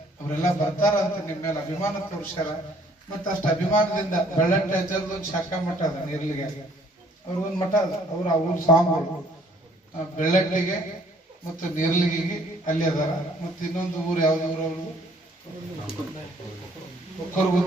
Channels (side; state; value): both; normal; correlation 0.60